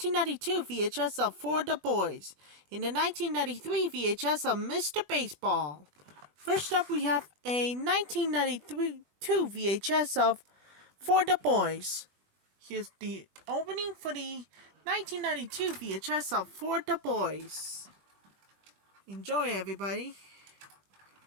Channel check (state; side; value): late; left; 20 ms